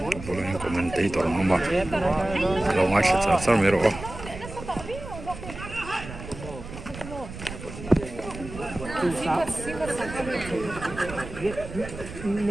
Boleh commentator nama. Kalau masih cakap mero.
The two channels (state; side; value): noise; right; rumble, 12 dB below the sound